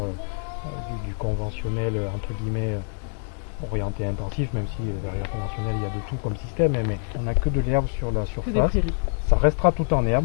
du conventionnel entre guillemets orienté intensif, même si derrière conventionnel il y a de tout comme système, mais on n'a que de l'herbe sur la surface. Ça restera tout en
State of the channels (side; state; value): right; silent; digital silence